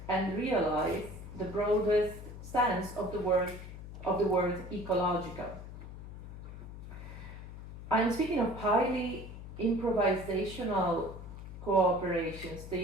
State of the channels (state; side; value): noise; left; hum, 12 dB below the sound